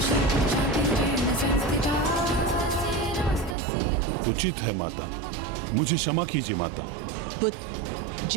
उचित है माता, मुझे क्षमा कीजिए माता। पुत्र,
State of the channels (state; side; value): drops out; left; at 3.6 s